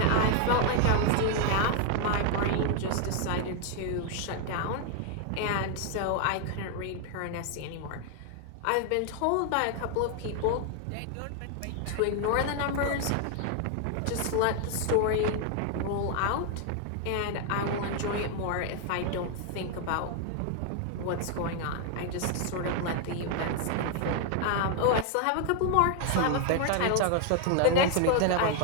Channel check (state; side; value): different; both; correlation 0.00